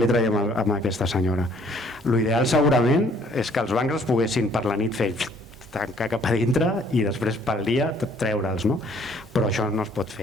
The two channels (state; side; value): normal; both; correlation 0.60